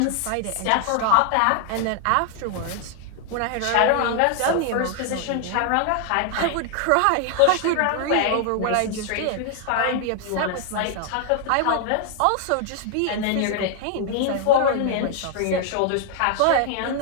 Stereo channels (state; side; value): different; both; correlation 0.00